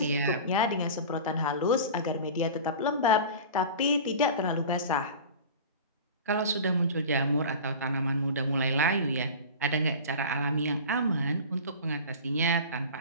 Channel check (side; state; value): both; inverted; correlation -0.34